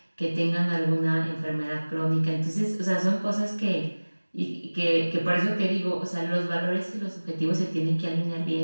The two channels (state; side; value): inverted; both; correlation -1.00